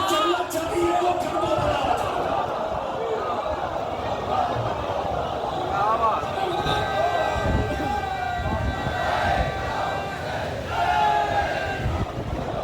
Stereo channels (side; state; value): both; identical; correlation 1.00